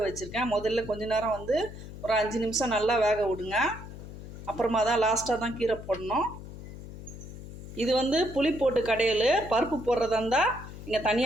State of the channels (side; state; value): left; noise; hum, 13 dB below the sound